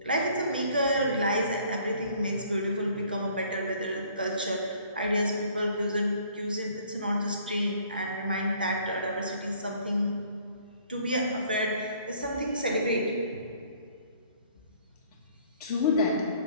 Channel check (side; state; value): both; inverted; correlation -0.58